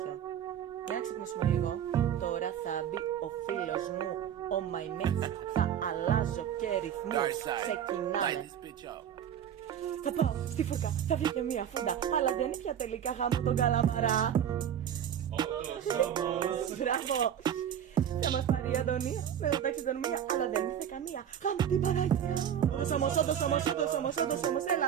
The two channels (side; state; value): left; quieter; 9.4 dB